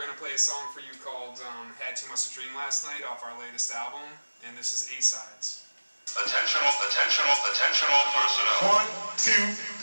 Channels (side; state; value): both; inverted; correlation -1.00